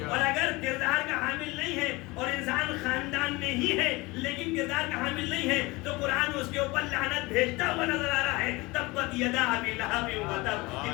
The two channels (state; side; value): quieter; right; 23.0 dB